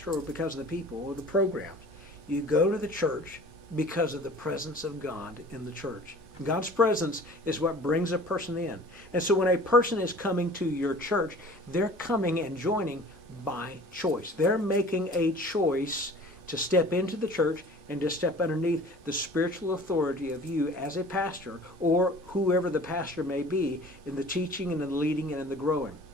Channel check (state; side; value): normal; both; correlation 0.46